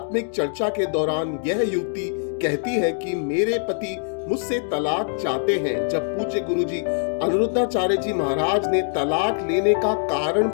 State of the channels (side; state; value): right; silent; digital silence